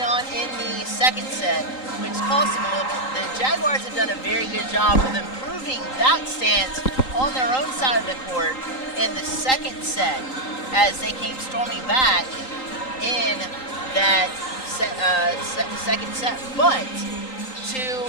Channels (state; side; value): late; right; 3.8 ms